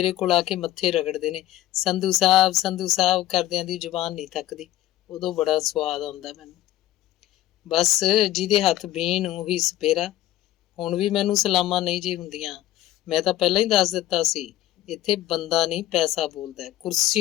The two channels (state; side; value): quieter; right; 14.4 dB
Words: ਕੋਲ ਆ ਕੇ ਮੱਥੇ ਰਗੜਦੇ ਨੇ, ਸੰਧੂ ਸਾਹਿਬ ਕਰਦਿਆਂ ਦੀ ਜ਼ੁਬਾਨ ਨਹੀਂ ਥੱਕਦੀ। ਉਦੋਂ ਬੜਾ ਸਵਾਦ ਆਉਂਦਾ ਮੈਨੂੰ। ਬਸ ਜਿਹਦੇ ਹੱਥ ਬੀਨ ਉਹੀ ਸਪੇਰਾ। ਹੁਣ ਵੀ ਮੈਨੂੰ ਸਲਾਮਾਂ ਨਹੀਂ ਜੀ ਹੁੰਦੀਆਂ। ਮੈਂ ਤਾਂ ਪਹਿਲਾਂ ਹੀ ਦੱਸ ਦਿੱਤਾ ਸੀ, ਇੱਥੇ ਬੰਦਾ ਨਹੀਂ ਪੈਸਾ ਬੋਲਦਾ।